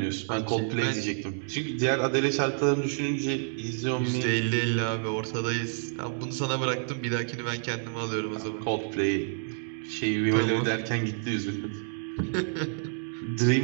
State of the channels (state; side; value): silent; left; digital silence